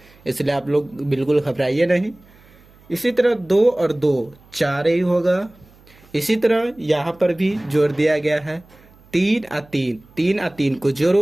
इसलिए आप लोग बिल्कुल घबराइए नहीं। इसी तरह 2 और 2 4 ही होगा। इसी तरह यहाँ पर भी जोड़ दिया गया है। 3 और 3, 3 और 3 को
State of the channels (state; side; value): noise; right; hum, 27 dB below the sound